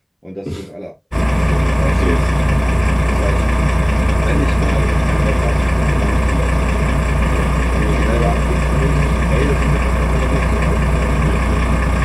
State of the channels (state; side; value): identical; both; correlation 1.00